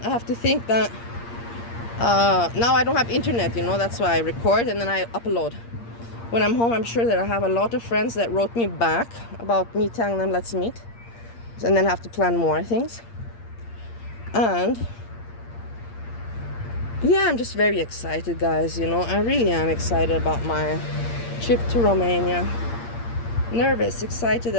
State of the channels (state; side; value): late; right; 8.6 ms